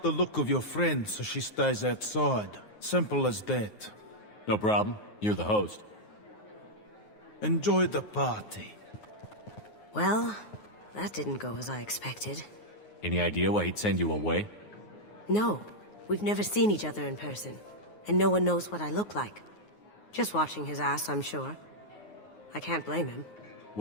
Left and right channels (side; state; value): right; late; 9.5 ms